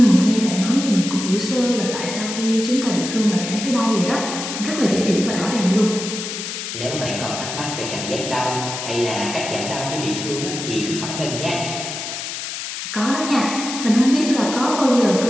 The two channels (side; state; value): left; noise; hiss, 6 dB below the sound